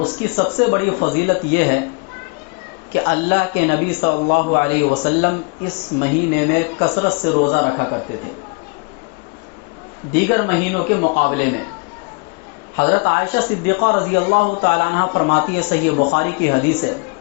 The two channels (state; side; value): quieter; right; 31.8 dB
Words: اس کی سب سے بڑی فضیلت یہ ہے کہ اللہ کے نبی صلی اللہ علیہ وسلم اس مہینے میں کثرت سے روزہ رکھا کرتے تھے دیگر مہینوں کے مقابلے میں. حضرت عائشہ صدیقہ رضی اللہ تعالیٰ عنہ فرماتی ہے، صحیح بخاری کی حدیث ہے،